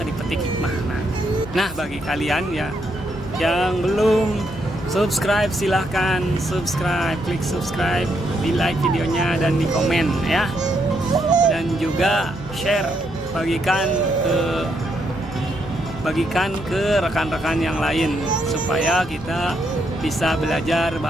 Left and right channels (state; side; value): noise; left; hum, 17 dB below the sound